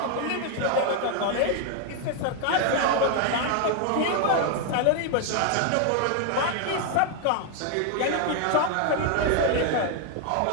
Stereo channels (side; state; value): both; different; correlation 0.01